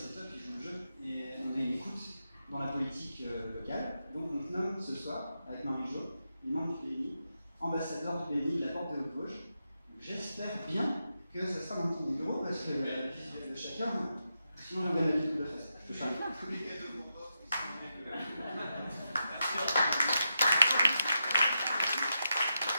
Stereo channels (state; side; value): inverted; both; correlation -0.86